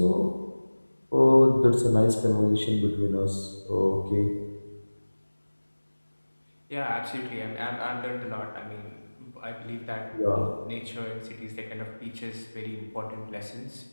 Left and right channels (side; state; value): both; inverted; correlation -1.00